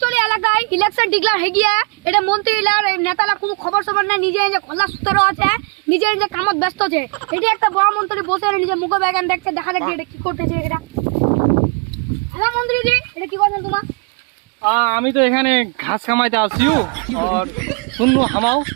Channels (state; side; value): quieter; left; 36.6 dB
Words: এলাকায় ইলেকশন ডিক্লার হয়ে গিয়ে এটা মন্ত্রীলার নেতারা কোনো খবর সবর না, নিজে নিজে খোলা সূত্র আছে, নিজে নিজে কামত ব্যস্ত আছে। এটি একটা বড় মন্ত্রী বসে নিজে মুখ ব্যাগান দেখছে, দেখা যাক এটা কি করতেছে। এটা হ্যালো মন্ত্রীজি, এটা কি করছেন তোমার? আমি তো এখানে ঘাস কামাইতে আসিও আর শুনলো হামাও